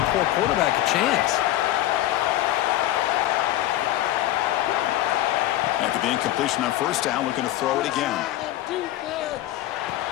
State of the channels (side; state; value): right; quieter; 14.5 dB